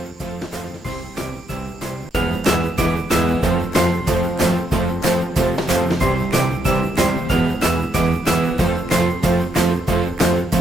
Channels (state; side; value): normal; both; correlation 0.78